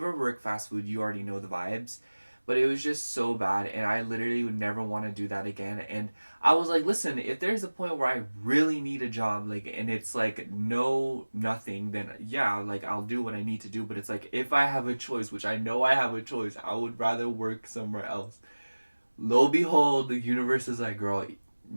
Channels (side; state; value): both; inverted; correlation -1.00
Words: work fast food, you already know the vibes. But it was just so bad, and I literally would never want to do that again. And I was like, listen, if there's a point where I really need a job, like, and it's like no nothing, then yeah, like I'll do what I need to do. But it's like if I have a choice, which I know I have a choice, I would rather work somewhere else. Lo and behold, the universe is like, girl,